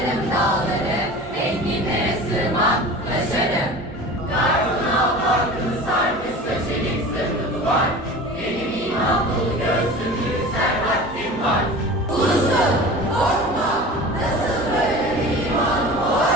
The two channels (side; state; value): both; normal; correlation 0.37